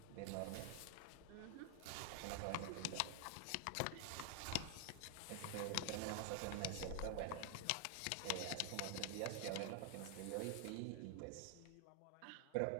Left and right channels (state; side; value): different; both; correlation 0.00